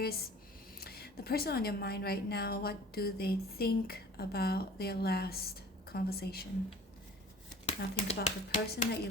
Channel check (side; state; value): both; normal; correlation 0.45